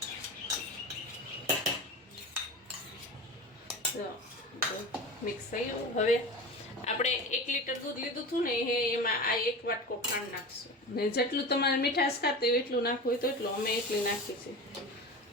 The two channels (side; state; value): both; normal; correlation 0.30